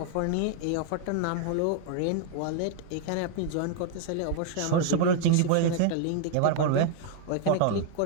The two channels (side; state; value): both; different; correlation 0.00